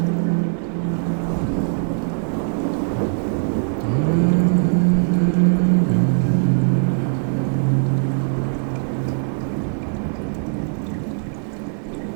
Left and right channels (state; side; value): silent; left; 65 dB below the other